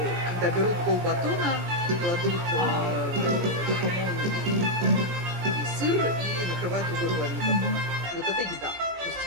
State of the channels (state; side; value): late; left; 17 ms